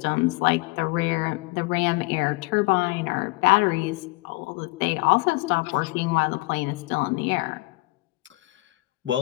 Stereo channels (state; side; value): quieter; right; 23.3 dB